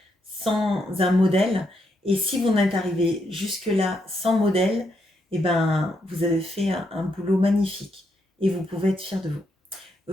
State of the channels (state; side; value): normal; both; correlation 0.79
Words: sans un modèle. Et si vous en êtes arrivé jusque-là sans modèle, eh ben, vous avez fait un boulot magnifique. Et vous pouvez être fier de vous.